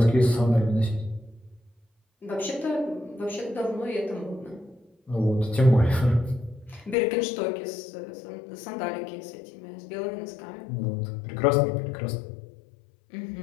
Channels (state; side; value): drops out; right; at 7.0 s